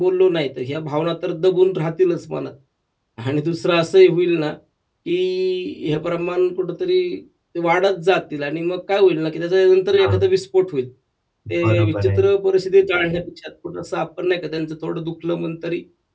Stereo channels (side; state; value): both; identical; correlation 1.00